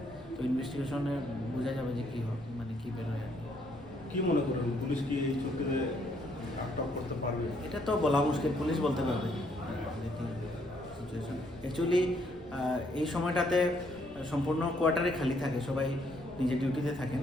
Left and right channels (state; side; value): noise; left; rumble, 22 dB below the sound